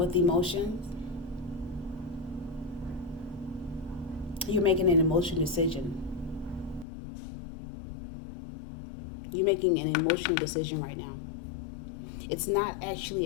emotion. You're making an emotional decision. You're making an emotional decision right now. It's not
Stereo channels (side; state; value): right; drops out; at 6.9 s